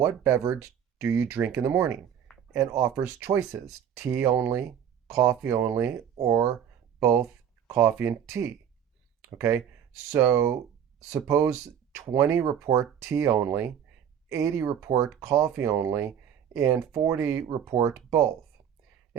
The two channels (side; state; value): left; quieter; 8.9 dB